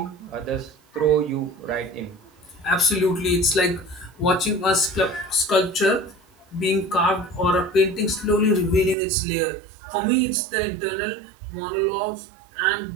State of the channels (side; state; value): left; drops out; at 9.0 s